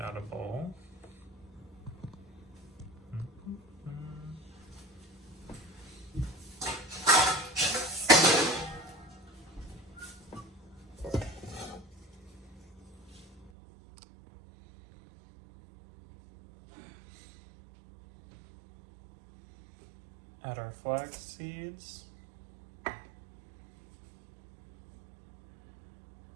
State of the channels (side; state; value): left; drops out; at 13.5 s